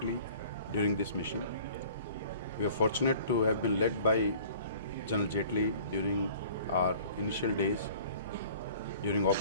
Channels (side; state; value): both; inverted; correlation -0.48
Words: during this mission. We are fortunate to have been led by General Jetley during our initial days, during Op